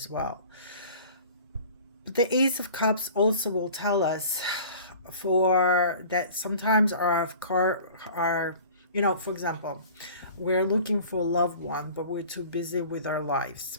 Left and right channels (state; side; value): inverted; both; correlation -0.44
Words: well. But the Ace of Cups also will tell us for that sometimes for example, we're looking for a loved one, but we're too busy with our lives.